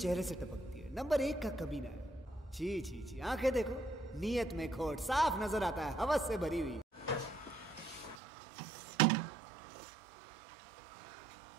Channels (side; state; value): left; drops out; at 8.2 s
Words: चेहरे से टपकती है, नंबर 1 का कमीना है। छी छी छी, आंखें देखो नीयत में खोट, साफ नजर आता है हवस से भरी हुई।